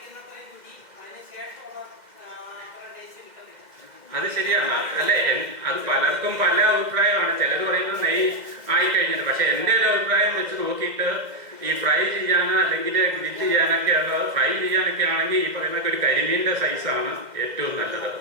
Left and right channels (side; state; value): left; late; 2.1 ms